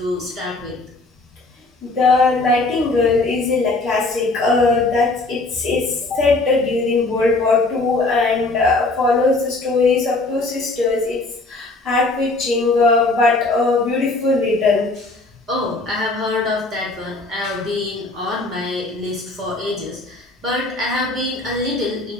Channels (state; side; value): quieter; right; 3.1 dB